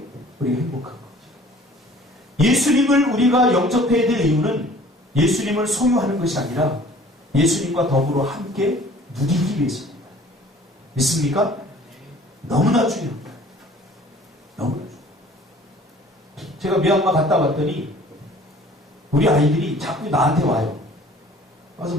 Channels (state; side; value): normal; both; correlation 0.50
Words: 우리가 행복한 거죠. 예수님을 우리가 영접해야 될 이유는 예수님을 소유하는 것이 아니라 예수님과 더불어 함께 누리기 위해서입니다. 믿습니까? 너무나 중요합니다. 너무나 중요합니다. 제가 미얀마 갔다 왔더니 우리 아이들이 자꾸 나한테 와요. 와서